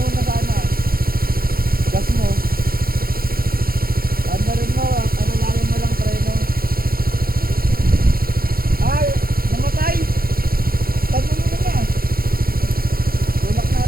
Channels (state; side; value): late; left; 0.43 ms